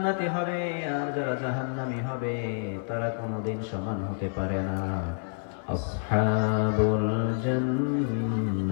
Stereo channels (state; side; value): silent; right; 59 dB below the other